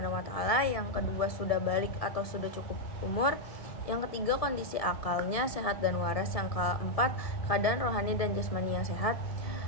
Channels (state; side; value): late; right; 1.7 ms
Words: wa taala. Yang kedua, sudah balik atau sudah cukup umur. Yang ketiga, kondisi akalnya sehat dan waras. Yang keempat, keadaan rohani dan jasmani yang sehat.